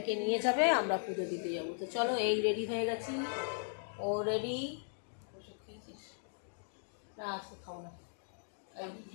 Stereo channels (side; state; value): right; silent; digital silence